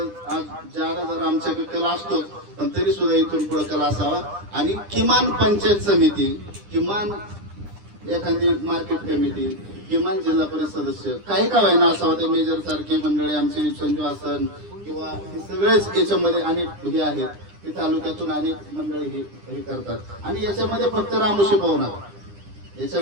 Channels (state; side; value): late; left; 9.9 ms